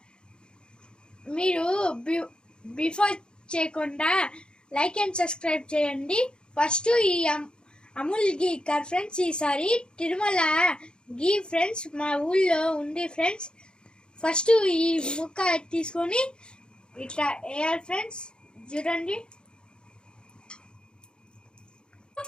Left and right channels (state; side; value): late; right; 0.050 ms